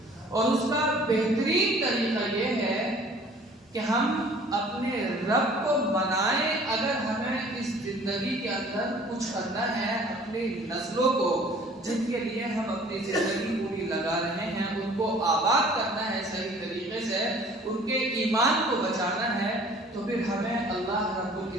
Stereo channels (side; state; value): both; normal; correlation 0.51